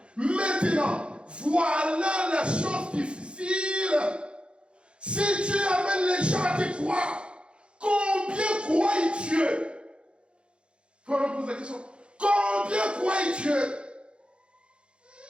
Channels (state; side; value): late; left; 0.057 ms